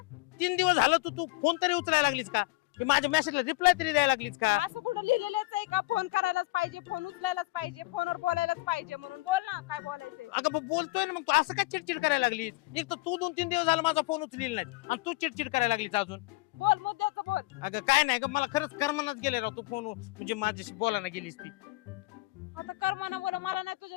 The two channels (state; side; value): quieter; right; 22.5 dB